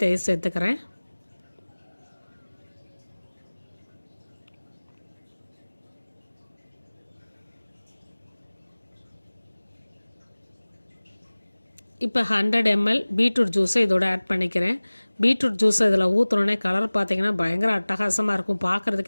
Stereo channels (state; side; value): inverted; both; correlation -1.00